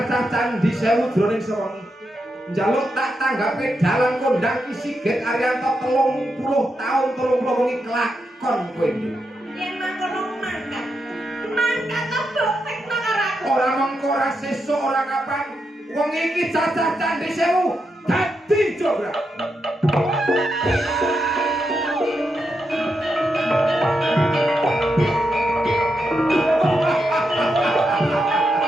candi 1000 jroning sewengi. Njaluk tak tanggapi dalang kondang ki Sigit Ariyanto 30 taun 30 wengi kelakon kowe iki. yen mangkono mangkat. Mangkat mbok tekno karo aku. Ora mengko ora sesuk ora kapan wong iki cacah candi 1000 dadi jograk.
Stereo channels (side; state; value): both; normal; correlation 0.84